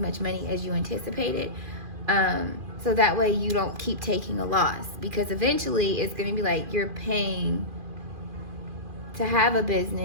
money as you anticipated, so that way you don't keep taking a loss, because eventually it's going to be like you're paying to have a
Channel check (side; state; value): left; late; 2.4 ms